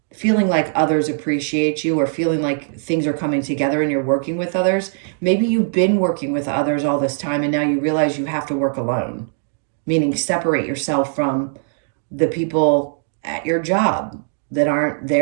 feeling like others appreciate you or feeling like things are coming together and you're working with others. Maybe you've been working with others all this time and now you realize you have to work alone. Meaning separate yourself from the people at your job that aren't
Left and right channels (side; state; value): left; silent; digital silence